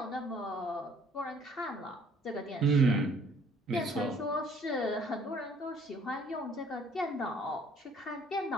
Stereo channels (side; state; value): both; normal; correlation 0.59